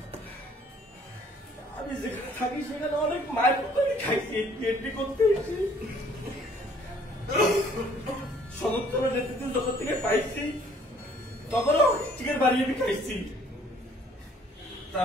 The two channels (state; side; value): normal; both; correlation 0.59